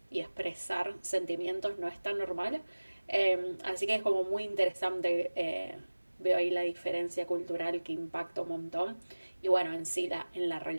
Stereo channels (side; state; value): both; inverted; correlation -1.00